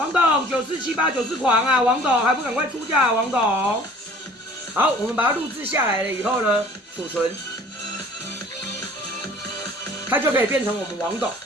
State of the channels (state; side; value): normal; both; correlation 0.50